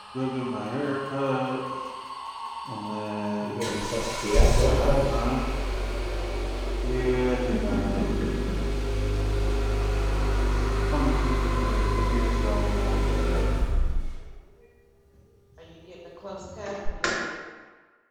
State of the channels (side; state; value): both; identical; correlation 1.00